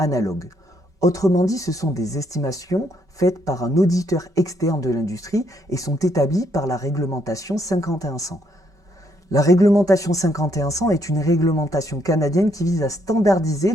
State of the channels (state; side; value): late; left; 5.2 ms